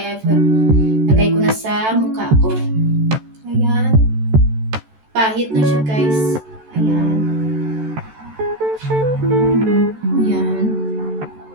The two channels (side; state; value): left; late; 14 ms